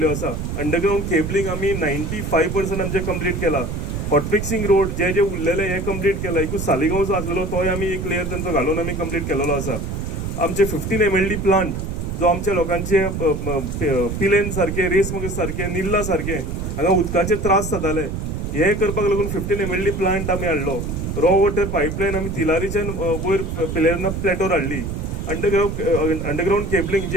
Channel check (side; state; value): right; noise; rumble, 4 dB below the sound